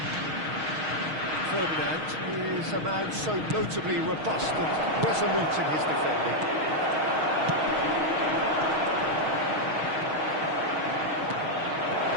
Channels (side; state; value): left; late; 6.4 ms